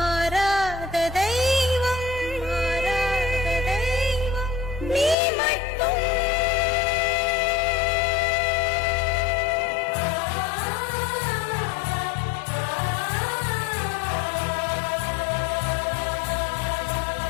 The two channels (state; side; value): drops out; right; at 5.2 s